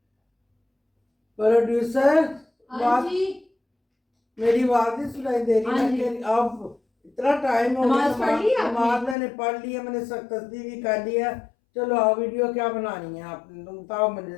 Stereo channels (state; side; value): drops out; right; at 9.2 s